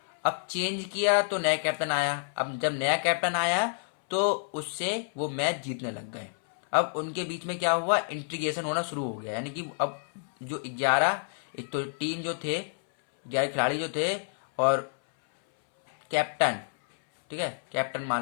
अब चेंज किया तो नया कैप्टन आया। अब जब नया कैप्टन आया तो उससे वो मैच जीतने लग गए। अब उनके बीच में क्या हुआ, इंटीग्रेशन होना शुरू हो गया, यानी कि अब जो 11, एक तो टीम जो थे 11 खिलाड़ी जो थे और कैप्टन, ठीक है, कैप्टन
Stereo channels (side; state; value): right; silent; 59 dB below the other